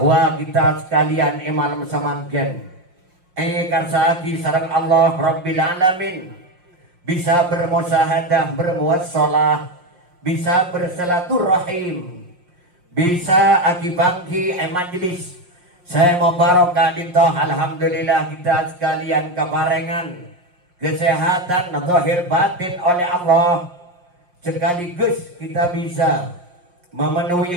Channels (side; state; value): left; late; 5.6 ms